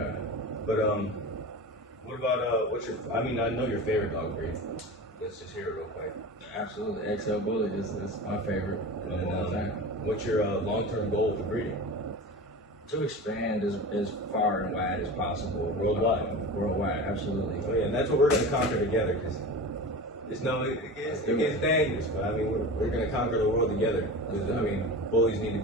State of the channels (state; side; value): normal; both; correlation 0.31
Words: But what about what's your? I mean, I know your favorite dog breed. Let's just hear it real quick. Absolutely, XL Bullie is my favorite of all time. What's your long-term goal for breeding? To expand as far and wide as possible. Worldwide, absolutely. Oh yeah, and that's what we're gonna conquer together. Because it gets dangerous, but I mean we're gonna conquer the world together. Because I mean bullies need to